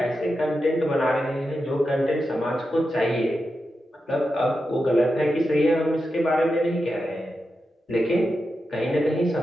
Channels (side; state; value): both; normal; correlation 0.89